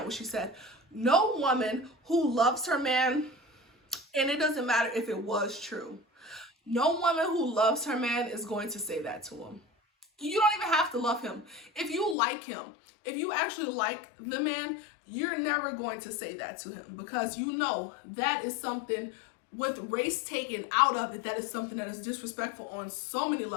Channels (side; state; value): right; drops out; at 12.2 s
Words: what she said. No woman who loves her man, and it doesn't matter if it was true, no woman who loves her man is going to say that to him. You don't even have to love him. If you like him, if you actually like the man, you're never going to say that to him, because you know that is something, with race taken out of it, that is something that is disrespectful on so many